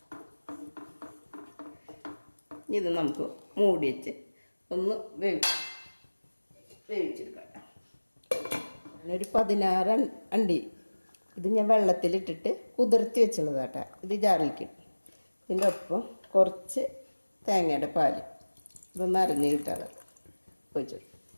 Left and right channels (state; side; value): inverted; both; correlation -1.00